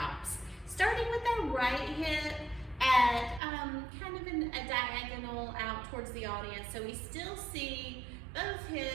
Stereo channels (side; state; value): left; drops out; at 3.4 s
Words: starting with our right hip at kind of a diagonal out towards the audience. So we still see both